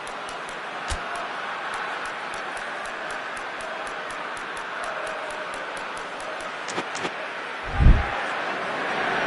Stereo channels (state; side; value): identical; both; correlation 1.00